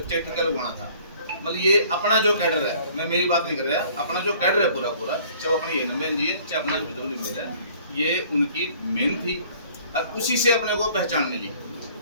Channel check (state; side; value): inverted; both; correlation -0.54